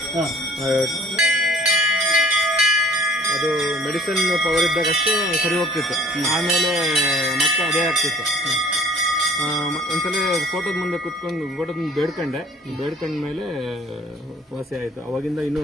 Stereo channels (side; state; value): both; normal; correlation 0.53